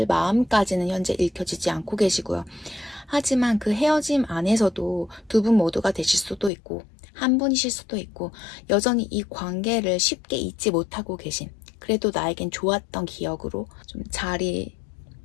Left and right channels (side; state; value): right; drops out; at 6.5 s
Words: 마음까지는 현재 읽혀지지 않고 계시고요. 하지만 그 헤어짐 안에서도 두 분 모두가 되실 수도 있고 한 분이실 수도 있고 여전히 이 관계를 쉽게 잊지 못하고 계신, 그래도 나에겐 좋았던 기억으로 좀